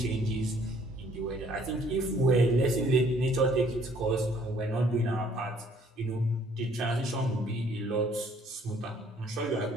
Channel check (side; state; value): both; normal; correlation 0.61